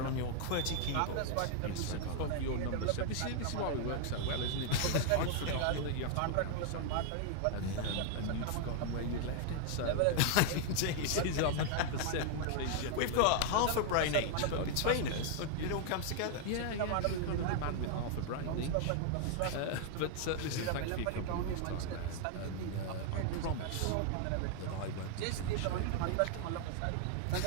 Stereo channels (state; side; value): different; both; correlation 0.00